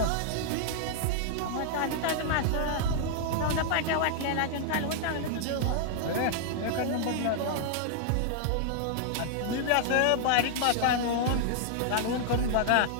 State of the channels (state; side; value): different; both; correlation -0.01